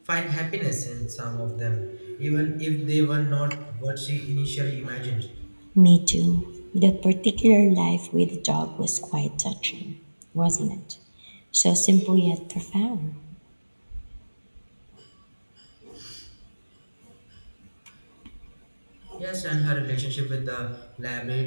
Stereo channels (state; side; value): inverted; both; correlation -1.00